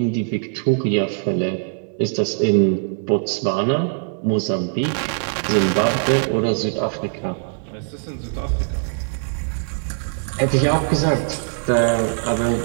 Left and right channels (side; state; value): left; silent; digital silence